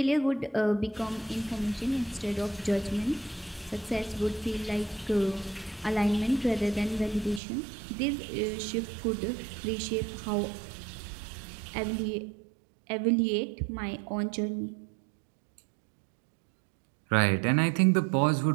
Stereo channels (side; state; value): left; drops out; at 7.4 s